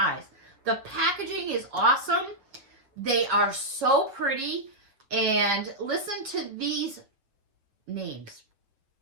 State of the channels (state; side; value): late; left; 7.6 ms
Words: The packaging is awesome. They are so pretty. And listen to these names.